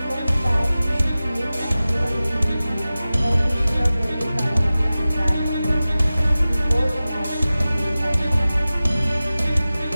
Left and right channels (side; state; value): both; inverted; correlation -0.96